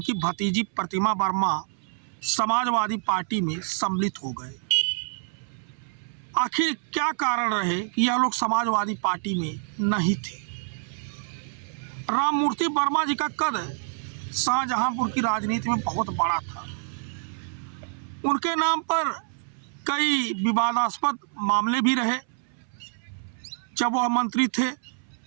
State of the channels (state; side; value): silent; left; 60 dB below the other